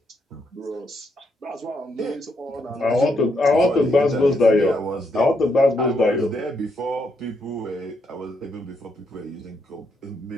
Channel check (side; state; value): both; normal; correlation 0.77